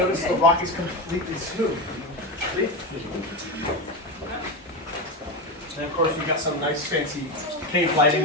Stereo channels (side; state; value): both; normal; correlation 0.16